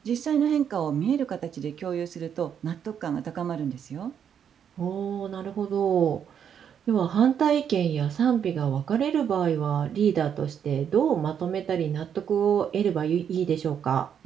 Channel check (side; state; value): left; quieter; 8.3 dB